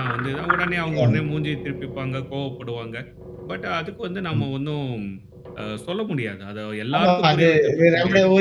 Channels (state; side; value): identical; both; correlation 1.00